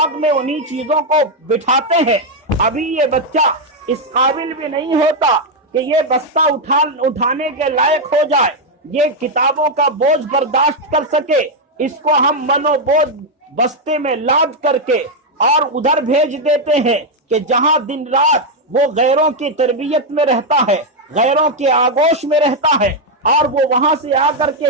میں انہی چیزوں کو بٹھاتے ہیں۔ ابھی یہ بچہ اس قابل بھی نہیں ہوتا کہ یہ بستہ اٹھانے کے لائق ہو جائے، یہ کتابوں کا بوجھ برداشت کر سکے۔ اس کو ہم منو بوجھ بستے میں لاد کر کے اور ادھر بھیج دیتے ہیں کہ جہاں دن رات وہ غیروں کی تربیت میں رہتا ہے، غیروں کے آغوش میں رہتا ہے، اور وہ وہاں سے آ کر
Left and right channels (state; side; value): normal; both; correlation 0.01